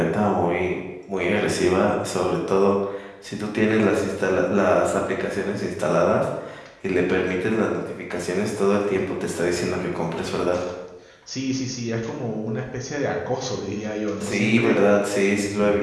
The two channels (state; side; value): identical; both; correlation 1.00